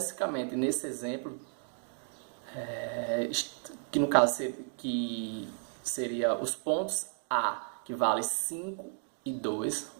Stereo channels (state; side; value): silent; left; 55 dB below the other